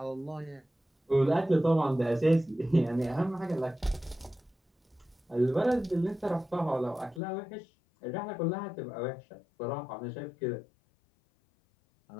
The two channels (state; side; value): drops out; right; at 7.2 s